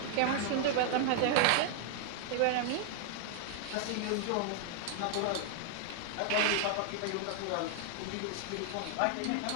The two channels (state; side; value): different; both; correlation 0.00